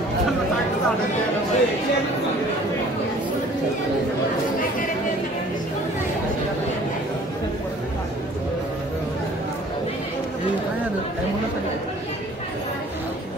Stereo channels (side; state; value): both; normal; correlation 0.52